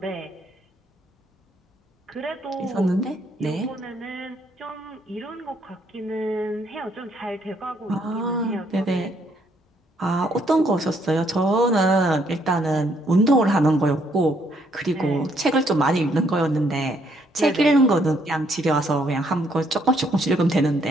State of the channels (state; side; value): normal; both; correlation 0.70